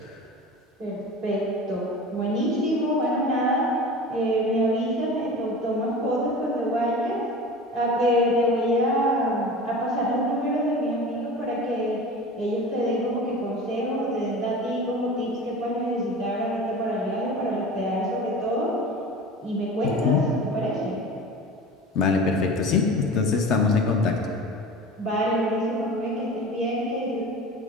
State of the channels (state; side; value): normal; both; correlation 0.35